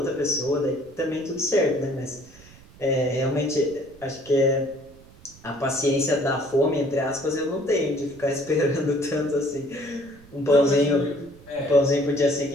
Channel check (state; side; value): noise; right; rumble, 23 dB below the sound